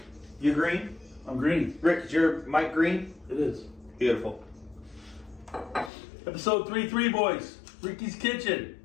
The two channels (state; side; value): drops out; right; at 5.9 s